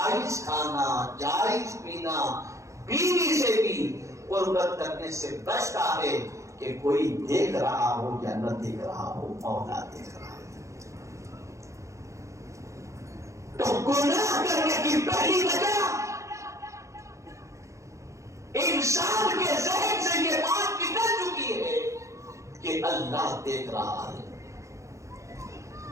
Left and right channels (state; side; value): late; left; 0.15 ms